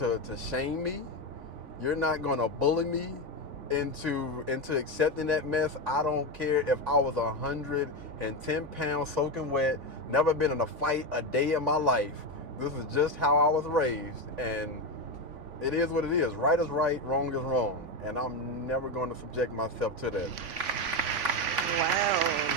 shame me. You're not going to bully me. into accepting that mess. I don't care if I was 110 pounds soaking wet, never been in a fight a day in my life. This is just how I was raised, and it is what it is. Right is right, wrong is wrong, and I'm never going to subject myself to that. Wow.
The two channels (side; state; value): left; late; 3.5 ms